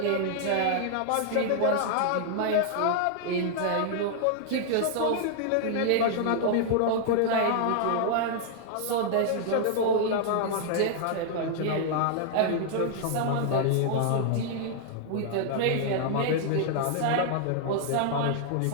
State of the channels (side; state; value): both; different; correlation -0.01